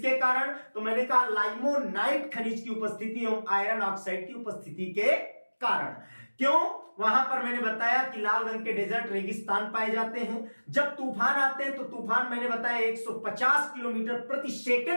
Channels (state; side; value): inverted; both; correlation -1.00